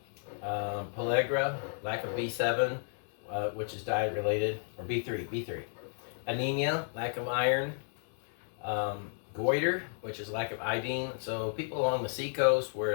Pellagra, lack of B7, which is diet related, or B3. Anemia, lack of iron. Goiter, which is lack of iodine. So people along the seacoast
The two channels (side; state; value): right; silent; 56 dB below the other